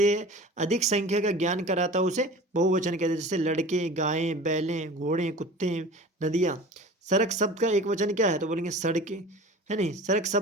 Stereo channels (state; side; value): normal; both; correlation 0.39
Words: अधिक संख्या का ज्ञान कराता है उसे बहुवचन कहते हैं। जैसे लड़के, गायें, बैलें, घोड़े, कुत्ते, नदियाँ। सड़क शब्द का एक वचन क्या है, तो बोलेंगे सड़कें, है नहीं। सड़क